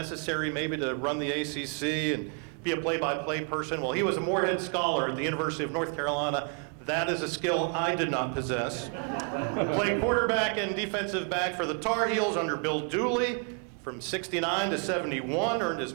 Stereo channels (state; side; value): quieter; left; 39.6 dB